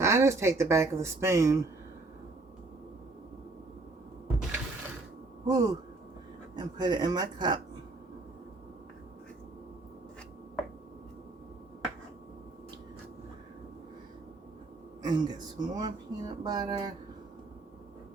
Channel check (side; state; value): left; quieter; 3.3 dB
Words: I just take the back of the spoon. Whoo, and put it in my cup. And get some more peanut butter.